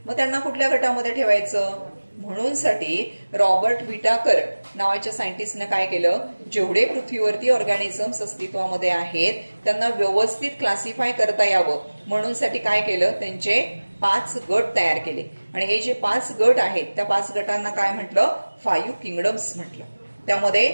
मग त्यांना कुठल्या गटामध्ये ठेवायचं? म्हणून साठी रॉबर्ट व्हिटाकर नावाच्या सायंटिस्टने काय केलं, जेवढे पृथ्वीवरती ऑर्गॅनिझम्स अस्तित्वामध्ये आहेत त्यांना व्यवस्थित क्लासिफाय करता यावं म्हणून साठी काय केलं, त्यांचे 5 गट तयार केले. आणि हे जे 5 गट आहेत त्या 5 गटांना काय म्हटलं? 5 किंगडम्स म्हटलं. त्यामध्ये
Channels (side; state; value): both; inverted; correlation -1.00